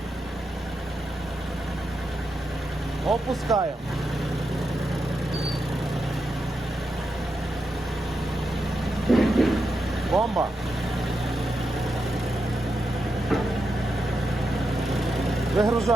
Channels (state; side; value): normal; both; correlation 0.86